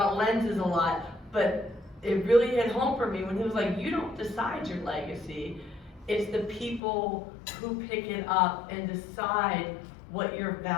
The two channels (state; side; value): drops out; right; at 6.8 s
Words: lenses a lot, but it really hit home for me when he was like, you don't decide your legacy. It's the people who pick it up and decide what your